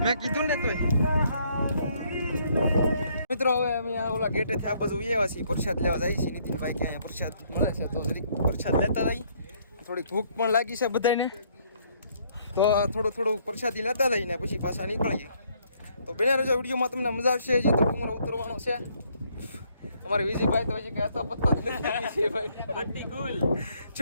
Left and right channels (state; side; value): inverted; both; correlation -0.67